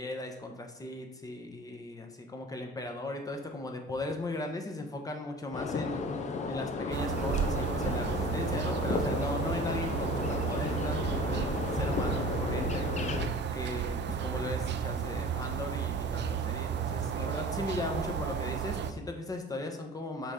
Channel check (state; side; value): normal; both; correlation 0.43